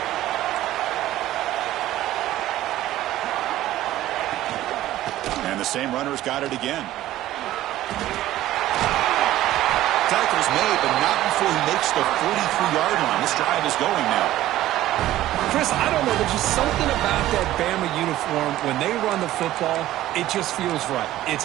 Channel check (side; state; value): left; quieter; 14.5 dB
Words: And the same runner's got it again. Tackle's made, but not before he makes the 43-yard line. This drive is going now. Chris, I don't know. There's just something about that Bama uniform. When they run the football, it just feels right. It's